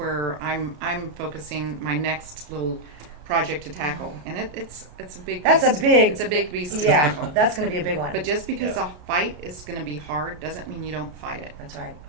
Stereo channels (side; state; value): left; late; 33 ms